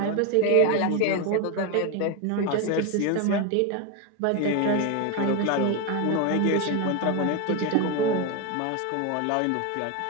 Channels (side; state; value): both; different; correlation 0.02